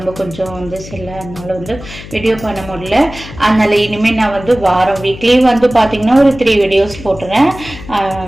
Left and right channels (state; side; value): noise; left; hum, 15 dB below the sound